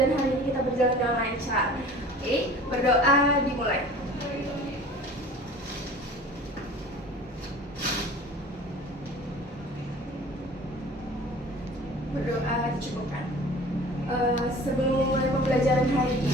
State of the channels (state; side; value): normal; both; correlation 0.44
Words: hari ini kita berjalan dengan lancar. Oke, berdoa dimulai. Berdoa dicukupkan. Sebelum mulai pembelajaran hari